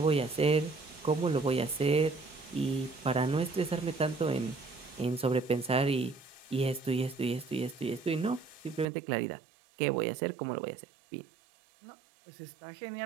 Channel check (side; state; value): left; drops out; at 8.8 s